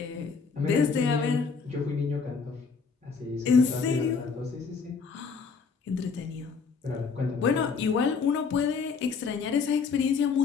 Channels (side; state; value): right; quieter; 5.3 dB